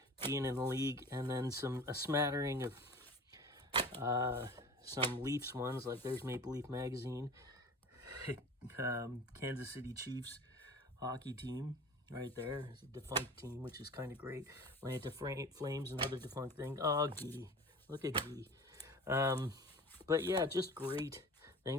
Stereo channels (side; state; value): both; normal; correlation 0.38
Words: being in the league, and then a smattering of some Leafs ones, like there's Maple Leaf Magazine, Kansas City Chiefs hockey team right there. It's a defunct team, which is kind of great. Atlanta Flames, another defunct thing. Oh, Gee. Look at Gee. But yeah, just great